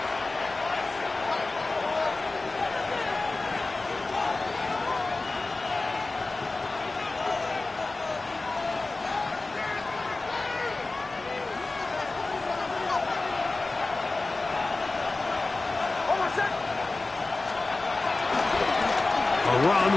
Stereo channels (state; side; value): quieter; right; 3.3 dB